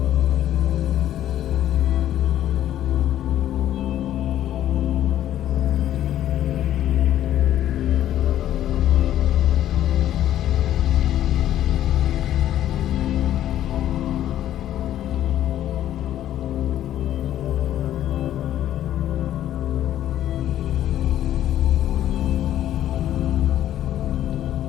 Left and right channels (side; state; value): right; quieter; 12.0 dB